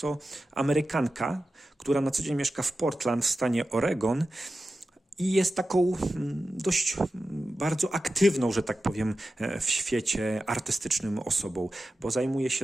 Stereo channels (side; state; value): both; normal; correlation 0.93